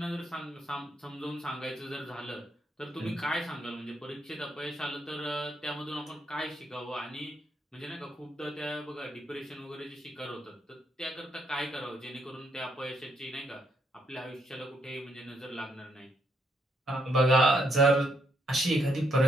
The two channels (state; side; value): normal; both; correlation 0.75